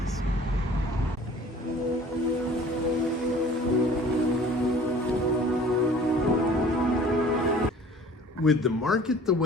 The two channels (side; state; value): both; normal; correlation 0.49